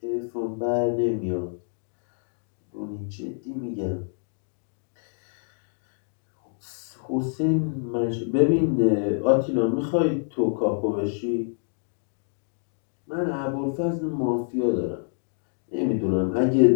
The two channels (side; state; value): right; silent; digital silence